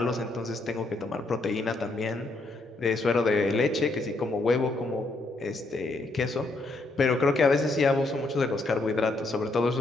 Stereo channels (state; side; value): quieter; right; 3.0 dB